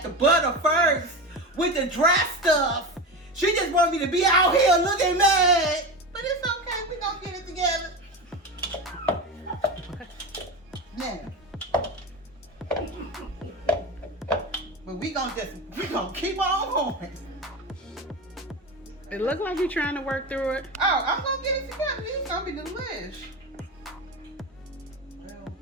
the butter first with the dry stuff. She just wanted me to be out here looking mad. But it's okay. We're going to get it together. Now. But we gonna keep on going. It look like you're trying to work through it. Oh, I'm gonna get it together. It's gonna be delish.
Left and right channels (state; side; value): normal; both; correlation 0.24